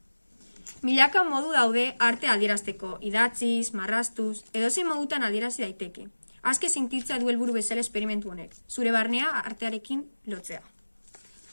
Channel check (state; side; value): inverted; both; correlation -1.00